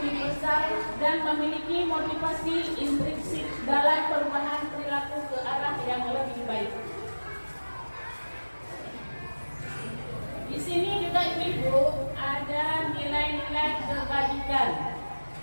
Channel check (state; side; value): inverted; both; correlation -1.00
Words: dan memiliki motivasi intrinsik dalam perubahan perilaku ke arah yang lebih baik. Di sini juga ibu ada nilai-nilai kebajikan.